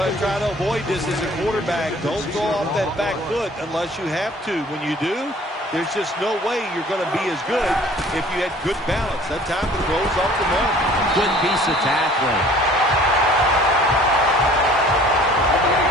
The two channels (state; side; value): normal; both; correlation 0.51